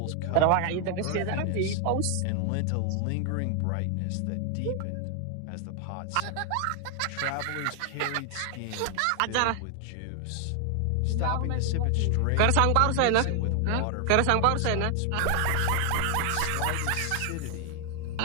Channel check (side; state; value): both; different; correlation 0.00